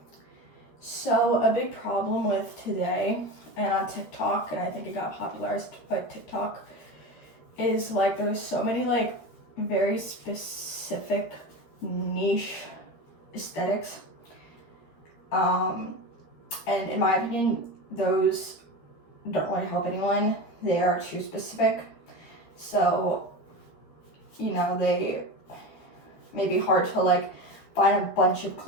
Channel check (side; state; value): right; late; 13 ms